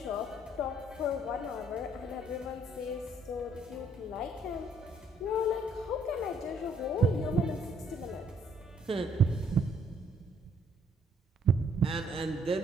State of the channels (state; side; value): normal; both; correlation 0.66